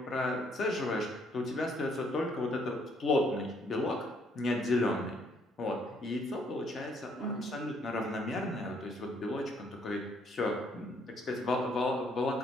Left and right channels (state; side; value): normal; both; correlation 0.68